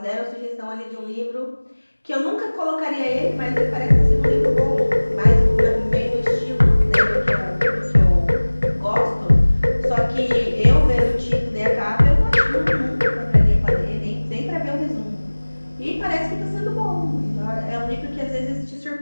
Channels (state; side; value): inverted; both; correlation -1.00